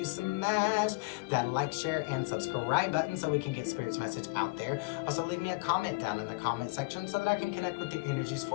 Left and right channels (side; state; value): right; quieter; 27.1 dB